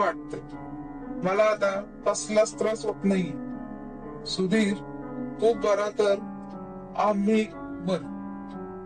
मला आता कसलाच त्रास होत नाही. सुधीर, तू बरा तर आम्ही बर.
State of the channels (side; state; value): both; identical; correlation 1.00